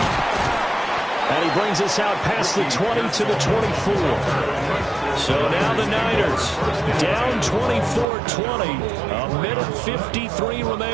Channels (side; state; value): left; drops out; at 8.1 s